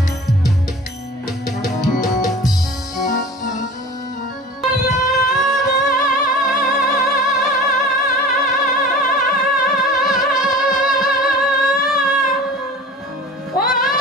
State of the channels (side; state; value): both; normal; correlation 0.40